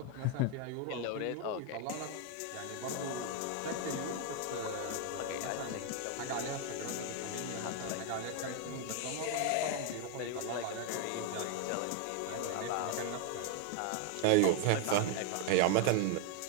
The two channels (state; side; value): different; both; correlation 0.01